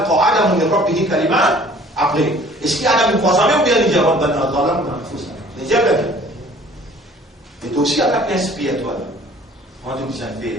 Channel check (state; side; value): normal; both; correlation 0.52